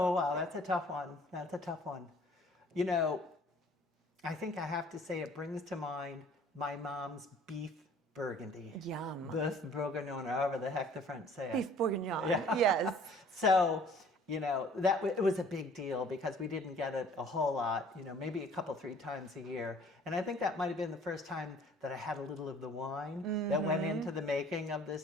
wow, that's a tough one. That's a tough one. You know, I think I have to say it brings to mind my mom's beef burgundy. Yum. Beef bourguignon, or however the heck the French say it. Beef bourguignon, Yeah. yes. So, you know, it was a big deal because we didn't get it a whole lot, you know, maybe a couple, 3 times a year. And I think that might have been the first time that I had a little of the wine that went into the making of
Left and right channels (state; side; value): normal; both; correlation 0.53